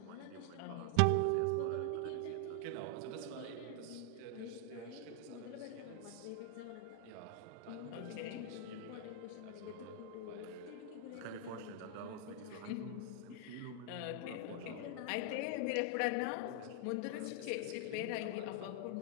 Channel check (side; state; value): both; different; correlation 0.00